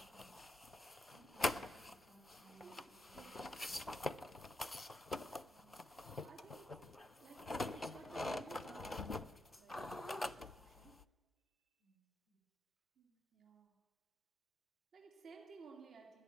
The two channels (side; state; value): both; normal; correlation 0.83